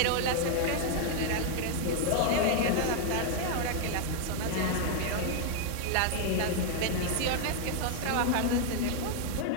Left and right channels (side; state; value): both; different; correlation 0.00